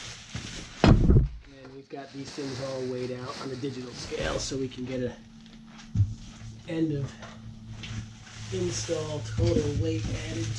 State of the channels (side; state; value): both; identical; correlation 1.00